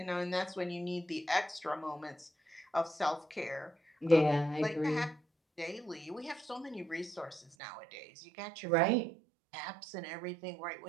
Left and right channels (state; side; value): drops out; left; at 7.6 s